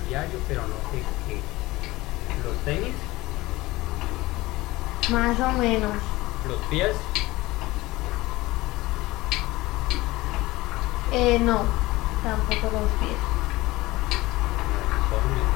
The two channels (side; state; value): right; quieter; 19.4 dB